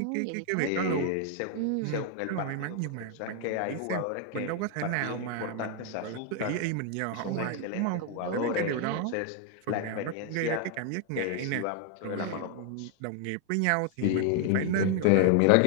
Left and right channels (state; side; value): different; both; correlation 0.00